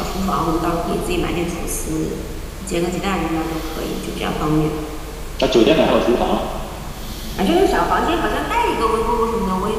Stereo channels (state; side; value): identical; both; correlation 1.00